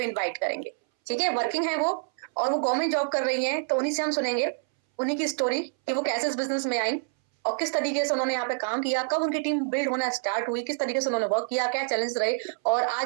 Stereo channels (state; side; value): silent; left; 60 dB below the other